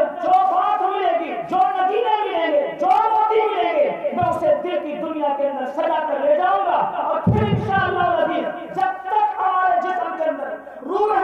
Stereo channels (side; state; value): both; identical; correlation 1.00